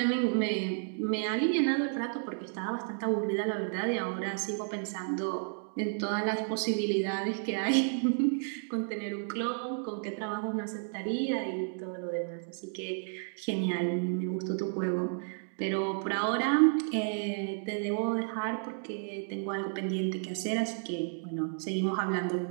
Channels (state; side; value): silent; left; digital silence